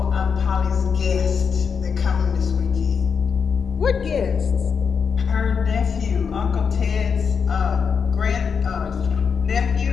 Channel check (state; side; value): quieter; right; 6.2 dB